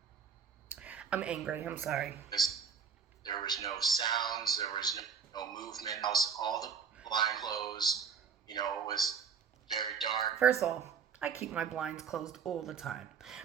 I'm angry. I'm sorry. There was no sounds. There was no movement. All the blind closed. You know, it was very dark. First of all, I keep my blinds closed all the time.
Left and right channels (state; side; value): quieter; left; 6.4 dB